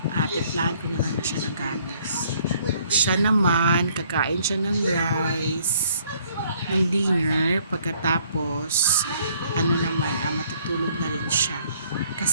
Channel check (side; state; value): both; inverted; correlation -0.62